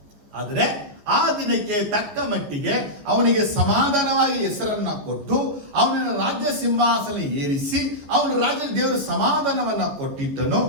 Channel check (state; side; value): late; left; 14 ms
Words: ಆದರೆ ಆ ದಿನಕ್ಕೆ ತಕ್ಕ ಮಟ್ಟಿಗೆ ಅವನಿಗೆ ಸಮಾಧಾನವಾಗಿ ಹೆಸರನ್ನ ಕೊಟ್ಟು ಅವನನ್ನು ರಾಜ್ಯ ಸಿಂಹಾಸನ ಏರಿಸಿ ಅವನ ರಾಜ್ಯ ದೇವರು ಸಮಾಧಾನವನ್ನ ಕೊಟ್ಟಿದ್ದನು.